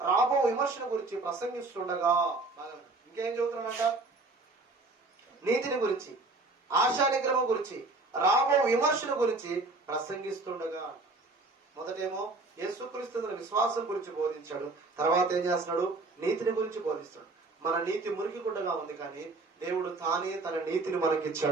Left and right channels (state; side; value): quieter; left; 3.3 dB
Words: రాబో విమర్శన గురించి ప్రసంగిస్తుండగా, ఇంకేం చెబుతున్నాడంట? నీతిని గురించి, ఆశా నిగ్రహం గురించి, రాబో విమర్శన గురించి ప్రసంగిస్తుండగా. మొదటేమో యేసుక్రీస్తు విశ్వాసం గురించి బోధించాడు. తర్వాత ఏం చేస్తున్నాడు? నీతిని గురించి బోధిస్తాడు. మన నీతి మురికి గుడ్డగా ఉంది, కానీ దేవుడు తానే తన నీతిని